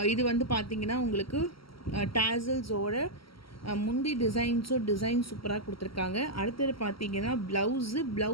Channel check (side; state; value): right; late; 0.75 ms